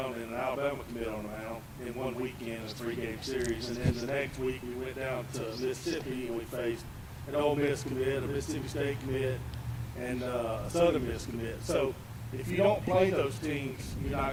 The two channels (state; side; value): identical; both; correlation 1.00